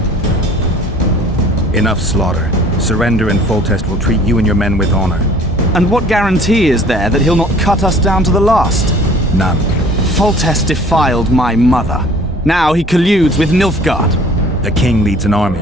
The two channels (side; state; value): both; normal; correlation 0.51